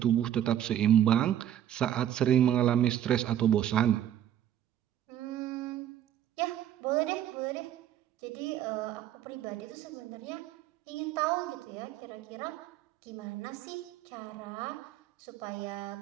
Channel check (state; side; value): quieter; left; 11.0 dB